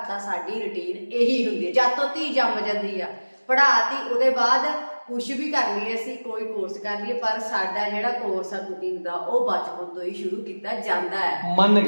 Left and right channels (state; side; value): inverted; both; correlation -1.00